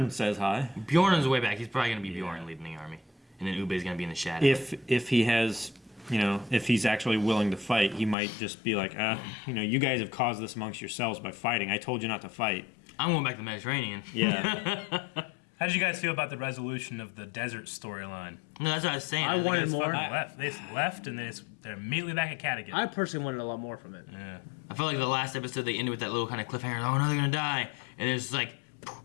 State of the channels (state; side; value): drops out; right; at 8.2 s